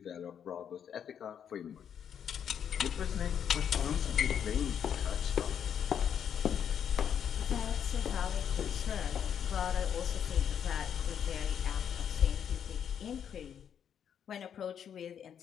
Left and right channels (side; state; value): right; quieter; 8.5 dB